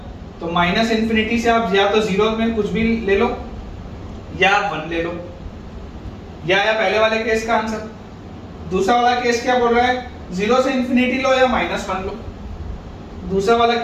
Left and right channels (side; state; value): both; identical; correlation 1.00